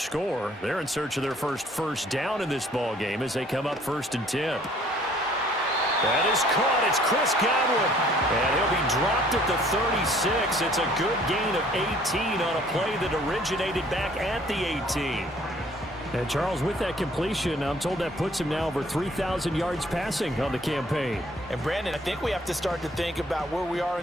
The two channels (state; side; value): normal; both; correlation 0.58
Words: score, they're in search of their first down in this ball game as they come up 1st and 10. That is caught. It's Chris Godwin. And he'll be dropped at the 36. It's a good gain of 18 on a play that originated back at the 18. And Charles, with that completion, I'm told that puts him now over 3,000 yards passing on the campaign. And Brandon, I think we have to start to think about where we are